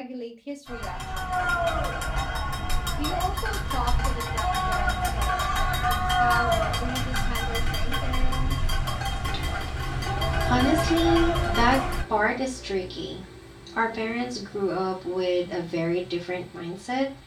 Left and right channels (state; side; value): identical; both; correlation 1.00